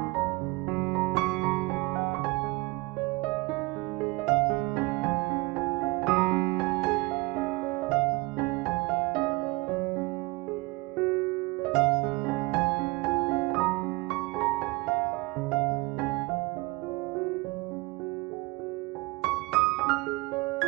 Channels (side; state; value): left; quieter; 23.9 dB